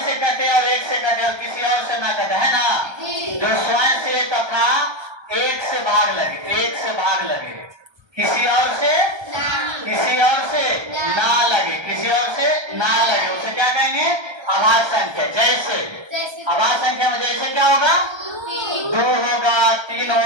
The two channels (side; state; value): left; late; 1.3 ms